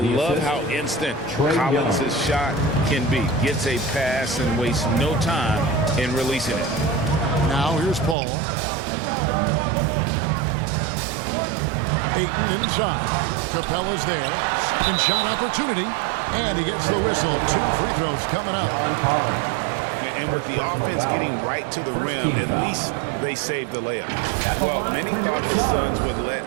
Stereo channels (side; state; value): left; drops out; at 8.2 s